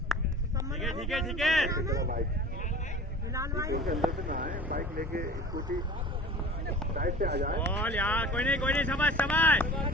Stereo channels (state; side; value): normal; both; correlation 0.41